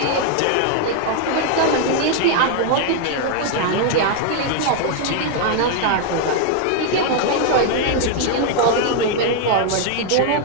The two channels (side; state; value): both; different; correlation 0.00